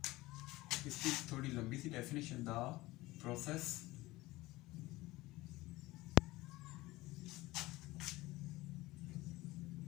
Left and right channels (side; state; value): right; quieter; 19.5 dB